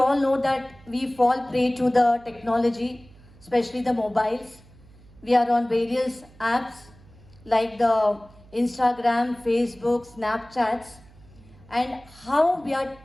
know that we fall prey to the technology, especially the mobiles. We are on various apps like the Instagram, Facebook, Snapchats, and how we are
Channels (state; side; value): noise; right; hum, 25 dB below the sound